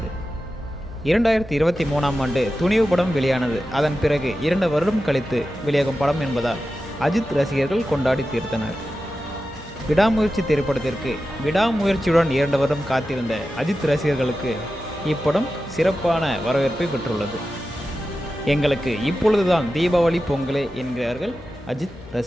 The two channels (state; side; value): noise; left; hum, 19 dB below the sound